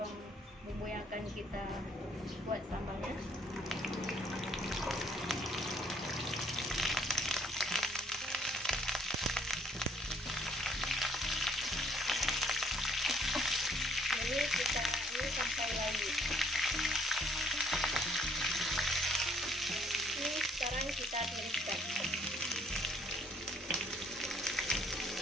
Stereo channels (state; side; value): normal; both; correlation 0.65